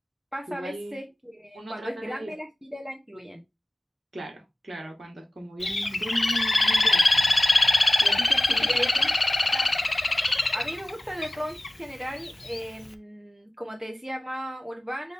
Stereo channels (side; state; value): both; normal; correlation 0.97